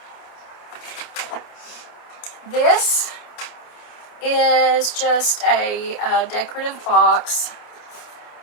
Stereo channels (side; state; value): right; late; 28 ms